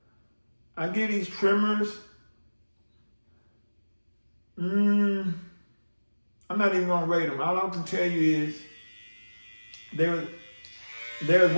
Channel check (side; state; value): both; inverted; correlation -1.00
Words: trimmers. I'm not even gonna rate them. All I can tell you is they're